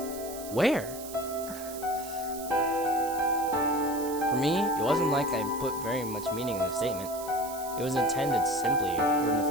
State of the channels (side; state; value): right; noise; hiss, 13 dB below the sound